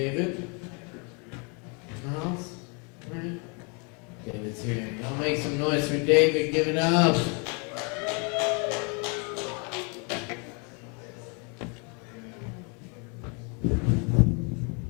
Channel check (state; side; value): quieter; right; 33.5 dB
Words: in the house, right? David's here. Y'all make some noise for David. Give it up.